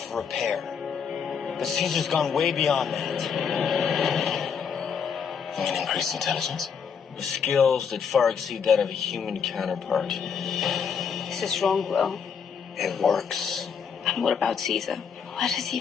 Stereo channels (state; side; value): quieter; right; 6.7 dB